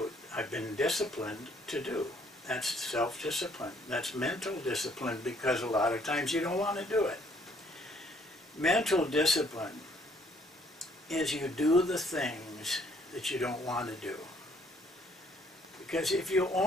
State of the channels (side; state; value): both; normal; correlation 0.64